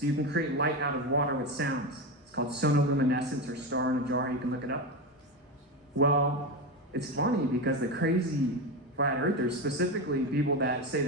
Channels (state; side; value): normal; both; correlation 0.17